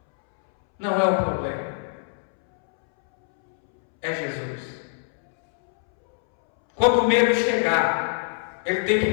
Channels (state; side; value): silent; right; 63 dB below the other